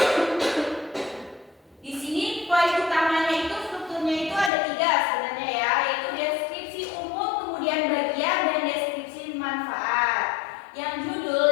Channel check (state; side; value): drops out; right; at 4.5 s